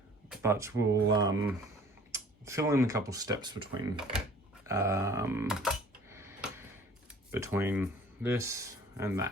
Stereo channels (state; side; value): normal; both; correlation 0.50